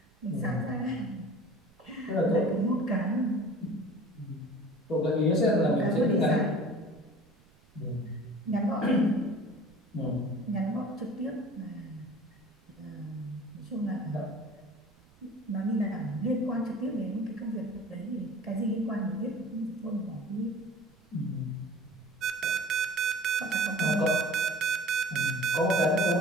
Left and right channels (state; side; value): noise; right; rumble, 29 dB below the sound